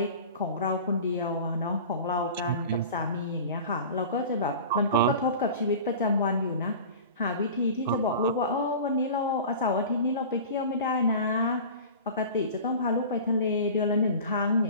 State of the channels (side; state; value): both; inverted; correlation -0.37